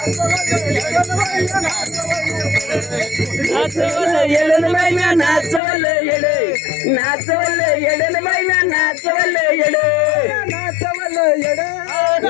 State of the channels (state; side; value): drops out; right; at 5.6 s